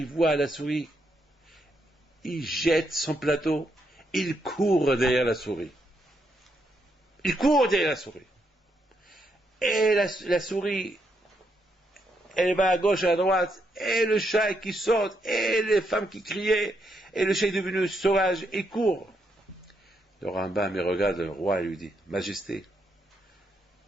voit la souris, il jette son plateau, il court derrière la souris. Il court derrière la souris. Et la souris, elle va à gauche, à droite, et le chat qui saute, et les femmes qui criaient, et le chat est devenu sauvage, il court. Le Rambam, il regarde le roi et lui dit, Majesté,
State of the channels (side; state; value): both; normal; correlation 0.78